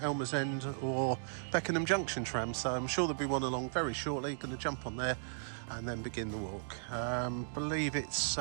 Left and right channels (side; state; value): left; silent; digital silence